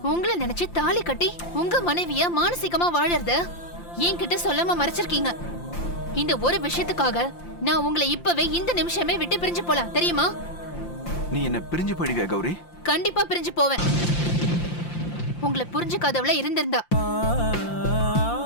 உங்களை நினைச்சு தாலி கட்டி உங்க மனைவிய மானசீகமா வாழறத என்கிட்ட சொல்லாம மறைச்சிருக்கீங்க. இந்த ஒரு விஷயத்துக்காக நான் உங்களை இப்பவே இந்த நிமிஷமே விட்டு பிரிஞ்சு போலாம், தெரியுமா? நீ என்ன பிரிஞ்சு போயிடுவியா கௌரி? கண்டிப்பா பிரிஞ்சு போவேன். உங்களை புரிஞ்சுக்காதவள இருந்திருந்தா.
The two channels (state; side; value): late; right; 5.8 ms